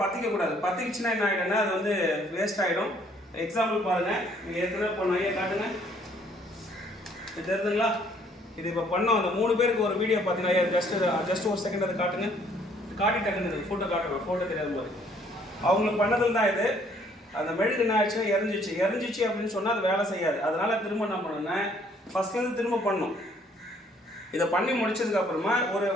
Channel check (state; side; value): normal; both; correlation 0.63